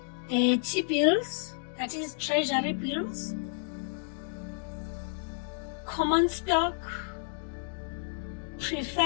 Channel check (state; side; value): silent; right; digital silence